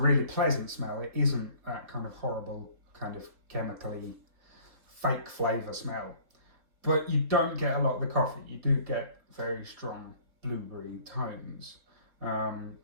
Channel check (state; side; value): late; left; 3.8 ms